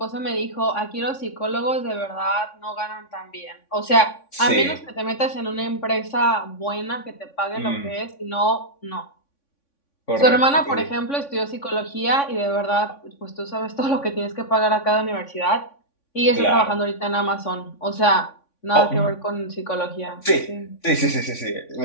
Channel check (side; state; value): right; late; 3.5 ms